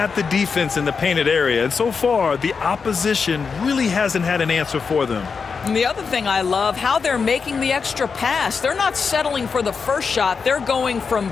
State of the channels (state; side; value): quieter; right; 5.4 dB